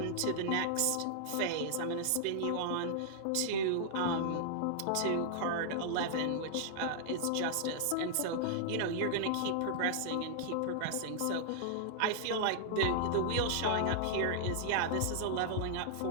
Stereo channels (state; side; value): different; both; correlation -0.01